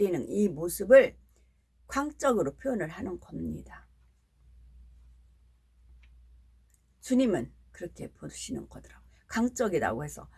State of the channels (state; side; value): identical; both; correlation 1.00